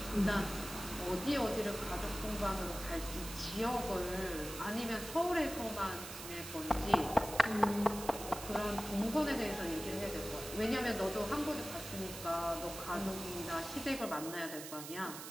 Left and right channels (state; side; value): noise; right; hiss, 10 dB below the sound